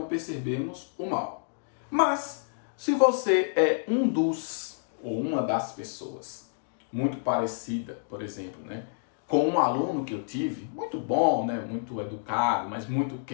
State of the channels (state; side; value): silent; right; digital silence